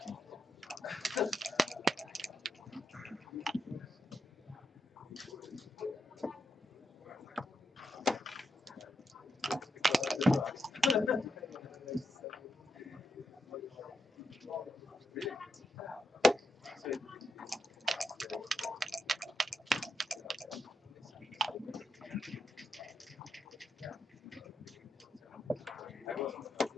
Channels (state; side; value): normal; both; correlation 0.83